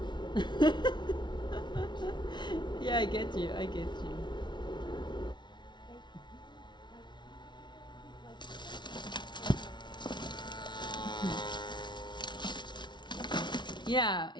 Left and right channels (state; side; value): late; right; 0.22 ms